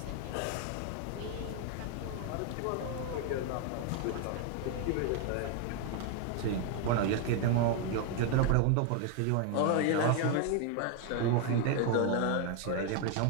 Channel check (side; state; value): both; different; correlation 0.01